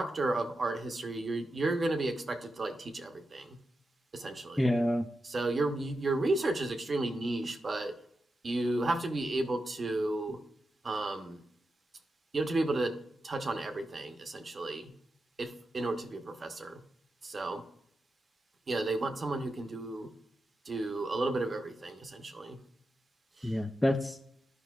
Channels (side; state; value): both; normal; correlation 0.89